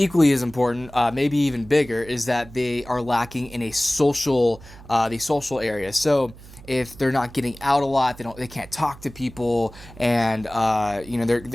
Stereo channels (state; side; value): noise; right; hum, 19 dB below the sound